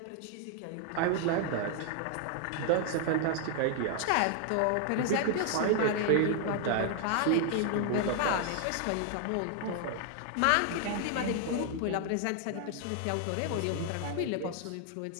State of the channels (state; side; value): different; both; correlation 0.00